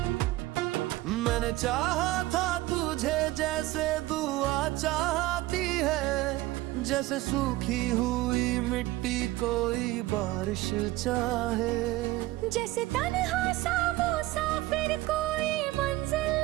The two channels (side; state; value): left; quieter; 18.0 dB